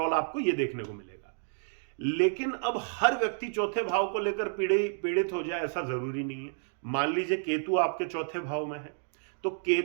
आपको ये देखने को मिलेगा। लेकिन अब हर व्यक्ति चौथे भाव को लेकर पीड़ित हो जाए ऐसा जरूरी नहीं है। मान लीजिए केतु आपके चौथे भाव में है, तो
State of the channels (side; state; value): left; silent; digital silence